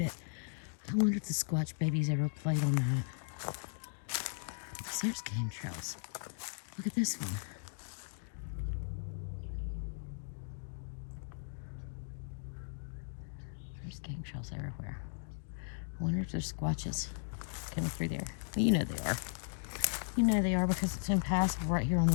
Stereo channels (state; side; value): silent; right; digital silence